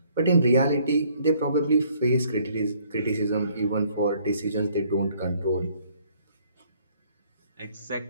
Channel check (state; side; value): inverted; both; correlation -0.63